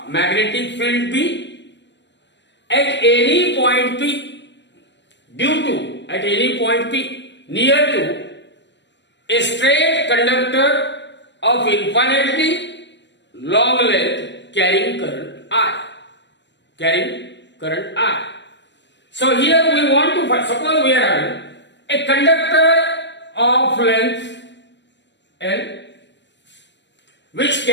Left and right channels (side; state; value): right; late; 0.52 ms